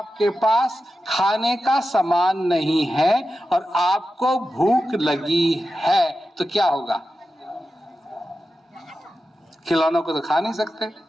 पास खाने का सामान नहीं है और आपको भूख लगी है तो क्या होगा? खिलौनों को तो खा नहीं सकते,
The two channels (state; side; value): normal; both; correlation 0.92